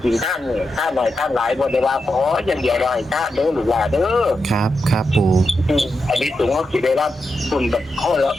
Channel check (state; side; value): normal; both; correlation 0.87